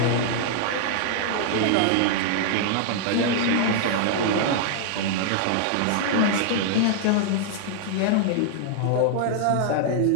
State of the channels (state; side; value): different; both; correlation -0.01